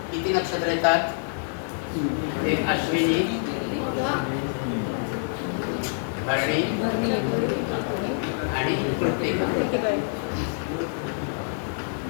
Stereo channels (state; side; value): silent; right; digital silence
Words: किती नक्षत्र येतात? एक अश्विनी, भरणी आणि कृत्तिका.